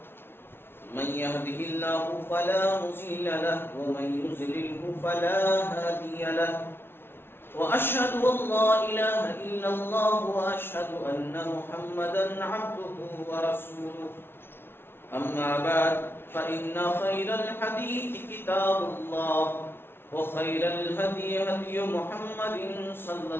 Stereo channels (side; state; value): right; late; 0.11 ms